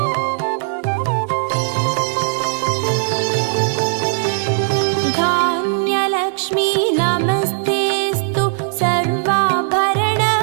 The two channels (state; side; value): silent; left; digital silence